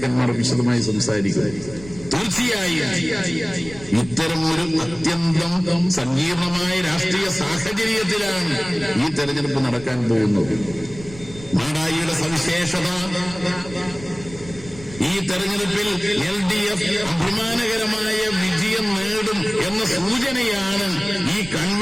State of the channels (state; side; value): noise; right; rumble, 17 dB below the sound